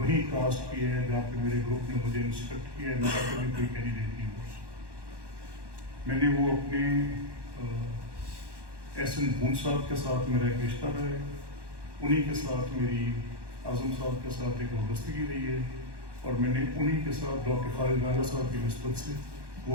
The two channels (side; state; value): left; late; 1.1 ms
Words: کاسٹ کیا ہے جہاں پہ میرے گروپ نے مجھے انسٹرکٹ کیا ہے، میرا کبھی کوئی کینڈیڈیٹ نہیں ہوا۔ میں نے وہ اپنے ایس این بون صاحب کے ساتھ میرا ایک رشتہ رہا ہے، انہی کے ساتھ میری اعظم صاحب کے ساتھ ایک وابستگی رہی ہے، اور میں نے انہی کے ساتھ ڈاکٹر خالد راجہ صاحب کی نسبت سے،